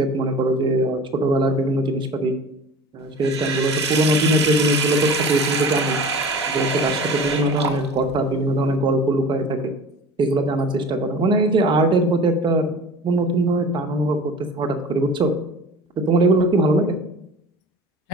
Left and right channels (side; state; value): both; normal; correlation 0.39